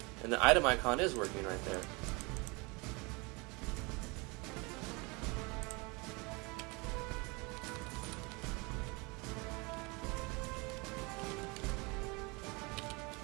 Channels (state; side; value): quieter; left; 27.4 dB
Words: And the item icon is working right there.